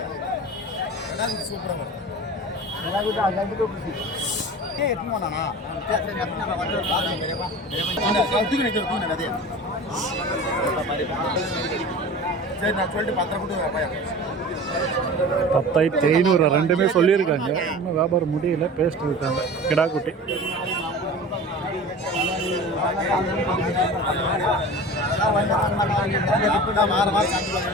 பத்தாயிரத்தி 500 ரெண்டுமே சொல்லியிருக்காங்க. இன்னும் வியாபாரம் முடியல, பேசிட்டு இருக்காங்க. கிடா குட்டி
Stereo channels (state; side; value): normal; both; correlation 0.36